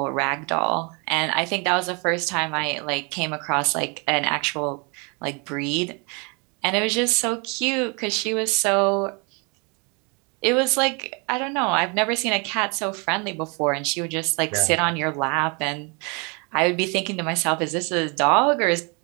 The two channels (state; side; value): quieter; left; 32.2 dB